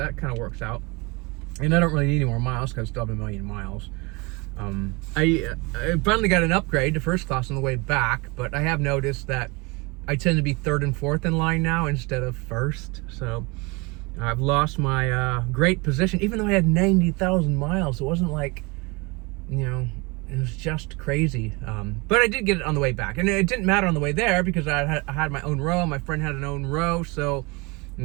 kind of works out. And I don't really need any more miles because I still have 1 million miles. I finally got an upgrade to first class on the way back, but I have noticed that I tend to be 3rd and 4th in line now instead of 1st. So I've lost my great position, even though I had 90,000 miles. It wasn't like, it was just crazy. But I did get it on the way back. And it didn't matter on the way there because I had my own row. My friend had an own row. So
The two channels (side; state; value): left; quieter; 26.7 dB